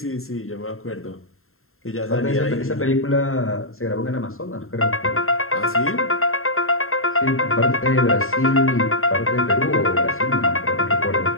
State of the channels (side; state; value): right; late; 0.61 ms